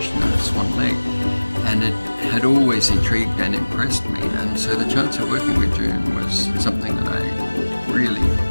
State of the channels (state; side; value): inverted; both; correlation -1.00